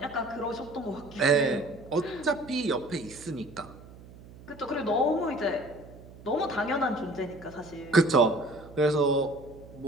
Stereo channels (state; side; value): noise; right; hum, 19 dB below the sound